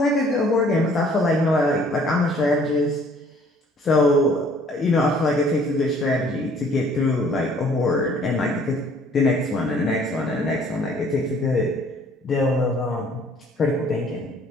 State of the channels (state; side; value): normal; both; correlation 0.58